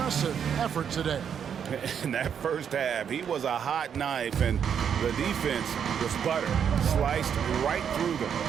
effort today. In that first half, he was a hot knife, and the defense was butter, sliced right through them.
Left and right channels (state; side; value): quieter; left; 7.9 dB